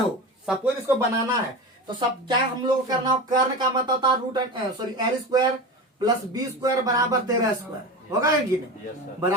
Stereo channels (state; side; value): normal; both; correlation 0.27